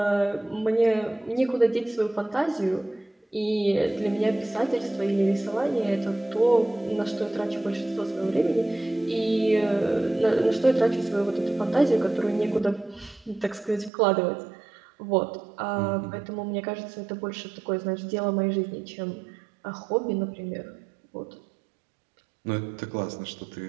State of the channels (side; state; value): left; drops out; at 13.9 s